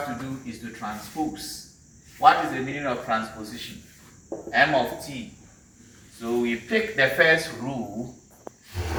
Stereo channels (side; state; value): both; identical; correlation 1.00